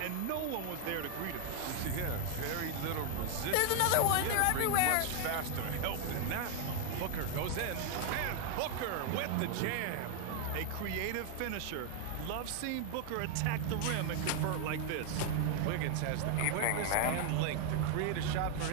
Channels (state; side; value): different; both; correlation 0.00